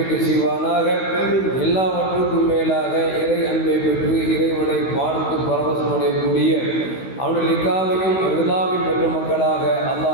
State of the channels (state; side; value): late; right; 16 ms